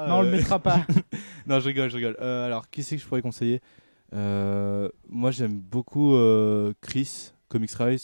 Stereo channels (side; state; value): both; inverted; correlation -1.00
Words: Non, on le mettra pas. Non, je rigole. Alors, qui c'est que je pourrais conseiller? Moi j'aime beaucoup Chris, Comics